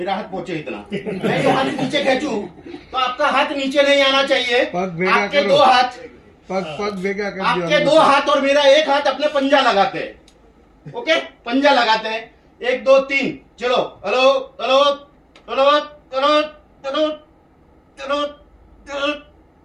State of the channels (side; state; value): both; identical; correlation 1.00